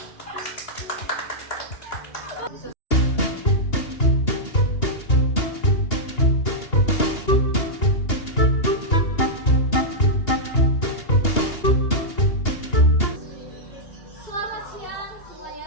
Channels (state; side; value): late; right; 2.8 ms